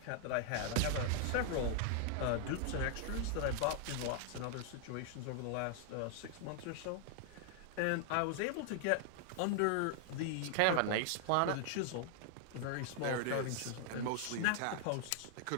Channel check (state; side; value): different; both; correlation 0.00